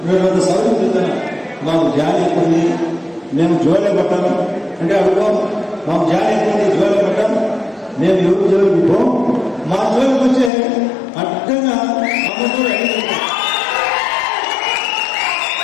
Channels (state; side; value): drops out; right; at 10.5 s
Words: మేము అంత సౌకర్యం చెప్తాను, మాకు జాలి ఎక్కుంది, మేము జోలే పట్టాము అంటే అడుగు, మాకు జాలి ఎక్కుంది, జోలే పట్టాము, మేము ఎవరు జోలికి పోము. మా జోలికి వచ్చే అడ్డంగా